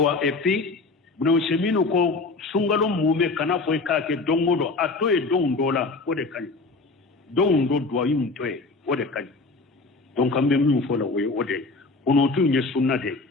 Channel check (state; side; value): quieter; right; 3.7 dB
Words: epi buno semino ko sungalo mume kana foy ka ke dongodo ato e dondola o de kan dondo do yim toy o de kan donc ambe mu fola o de ono tu nye sunna de